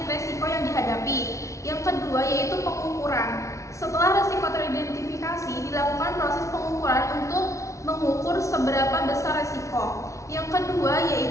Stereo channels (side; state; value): right; late; 0.15 ms